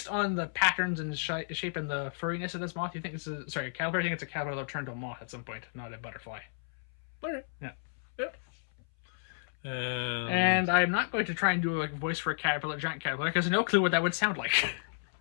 on the patterns and shape and the furriness of this moth, you think this is... Sorry, caterpillar, I think it's a caterpillar that'll turn to a moth at some point, not a butterfly. Okay. Yeah. Yep. And I'm not going to try and do a voice for a caterpillar, giant caterpillar, because I have no clue what that would sound like.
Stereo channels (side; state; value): right; silent; 56 dB below the other